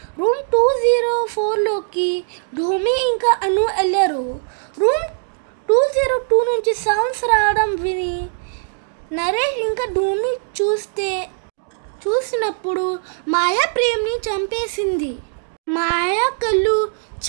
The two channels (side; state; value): left; silent; digital silence